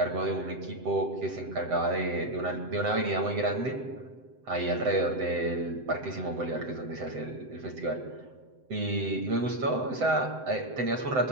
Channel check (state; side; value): late; left; 7.8 ms